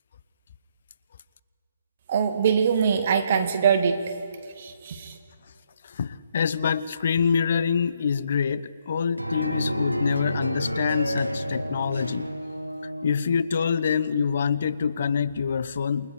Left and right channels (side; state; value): both; inverted; correlation -0.74